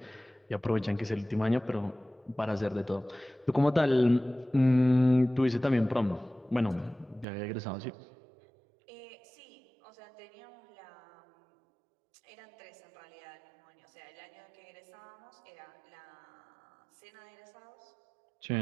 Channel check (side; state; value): left; drops out; at 7.2 s